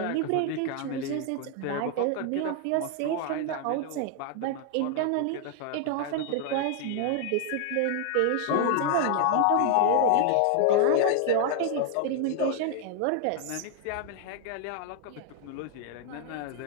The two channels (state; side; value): different; both; correlation 0.00